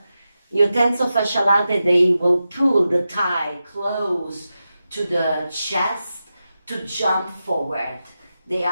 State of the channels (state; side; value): inverted; both; correlation -0.91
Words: Your tensor fascia latae, they will pull the thigh close to the chest to jump forward. They